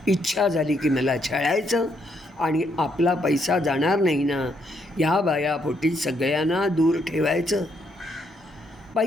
इच्छा झाली की मला छळायचं, आणि आपला पैसा जाणार नाही ना, ह्या बायापोटी सगळ्यांना दूर ठेवायचं.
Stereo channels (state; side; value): normal; both; correlation 0.74